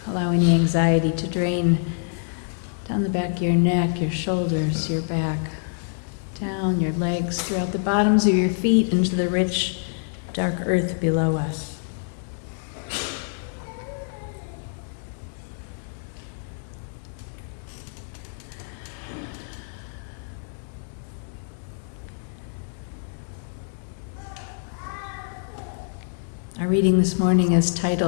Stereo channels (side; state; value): right; silent; digital silence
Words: Allow any anxiety to drain down the back of your neck, your shoulders, your back, down your legs, throughout the bottoms of your feet into the rich, dark earth below us. Our reading this morning is